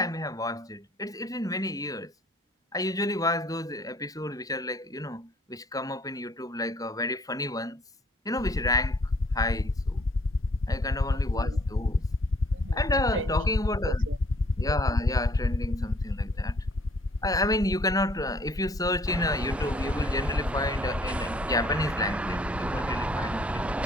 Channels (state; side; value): normal; both; correlation 0.60